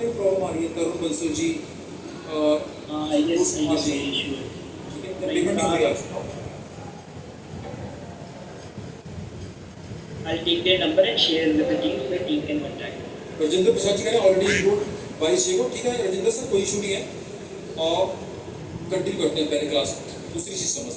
में प्रॉब्लम आ रही है? तरुण बंसल जी, ठीक है, पेमेंट नहीं हो रहा। I'll take their number and share with the team so the team can contact. Rajendra Prasad ji का ऑलरेडी इंक्लूड 22 को। ठीक है राजेंद्र सर, कोई इशू नहीं है, और कंटिन्यू करते हैं पहले क्लास। दूसरी चीज़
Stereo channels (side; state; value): both; identical; correlation 1.00